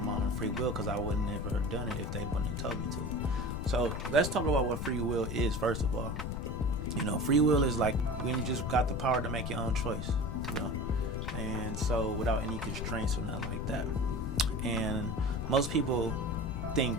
my own free will? Because I wouldn't never have done it if they wouldn't have told me to. So let's talk about what free will is first of all. You know, free will is like when you just got the power to make your own choice, you know? And so without any constraints or nothing like that. And most people think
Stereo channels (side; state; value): left; noise; rumble, 4 dB below the sound